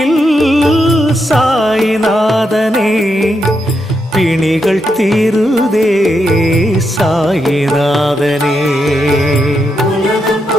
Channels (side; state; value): both; normal; correlation 0.82